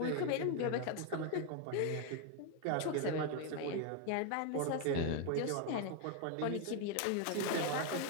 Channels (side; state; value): both; different; correlation 0.01